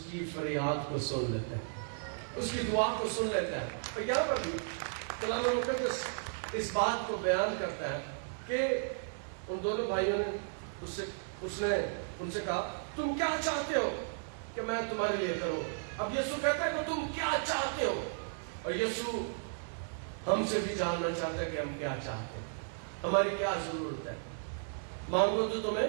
کی فریاد کو سن لیتے ہیں، اس کی دعا کو سن لیتا ہے. اور یہاں پر بھی کلام مقدس اس بات کو بیان کرتا ہے کہ ان دونوں بھائیوں نے اس نے ان سے کہا تم کیا چاہتے ہو کہ میں تمہارے لیے کروں. اب یسوع کہتا ہے کہ تم کیا چاہتے ہو. اور یسوع ہم سے بھی جاننا چاہتا ہے کہ ہم کیا چاہتے ہیں، ہماری کیا ضرورت ہے. مانگو تو تمہیں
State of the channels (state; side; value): silent; left; digital silence